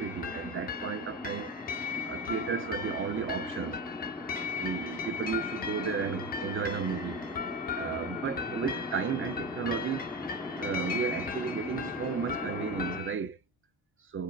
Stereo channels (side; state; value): both; normal; correlation 0.24